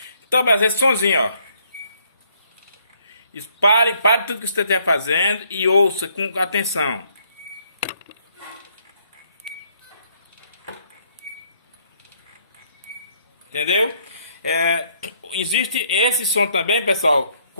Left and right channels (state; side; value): inverted; both; correlation -0.68